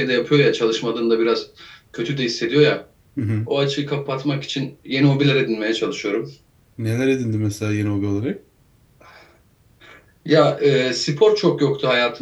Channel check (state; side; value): identical; both; correlation 1.00